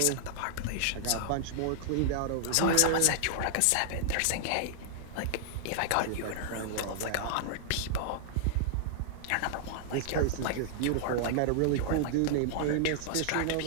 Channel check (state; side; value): different; both; correlation -0.01